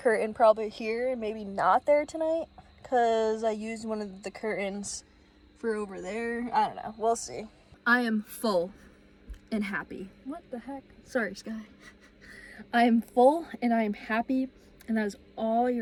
probably here and maybe not there tonight, because I used one of the curtains for over there. I don't know. We'll see. I am full and happy. What the heck? Sorry, Sky. I am full and I am happy, and that is all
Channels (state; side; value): identical; both; correlation 1.00